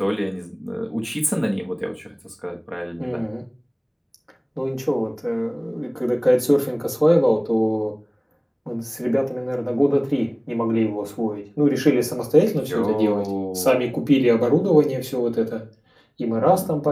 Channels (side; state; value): both; identical; correlation 1.00